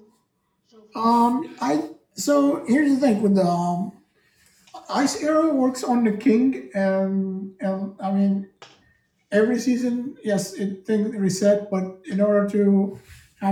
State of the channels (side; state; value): both; identical; correlation 1.00